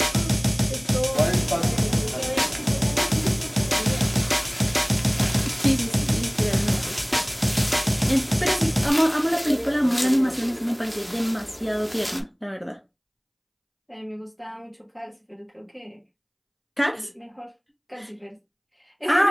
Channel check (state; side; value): identical; both; correlation 1.00